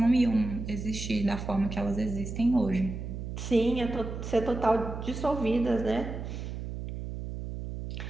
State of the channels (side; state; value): right; noise; hum, 7 dB below the sound